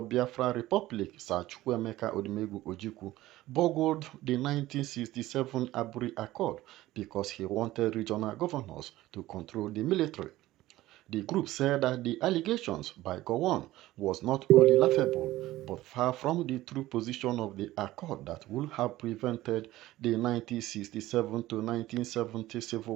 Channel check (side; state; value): left; quieter; 16.4 dB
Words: Biafra Republic, Sir Chukwuemeka Odumegwu Ojukwu, burgled the 1967 Aburi Accord because he wanted regional governors to control the military. The group said that the allegations by Gowon was not only laughable, but far from the true position of the accord that would have prevented the 1967 to 1970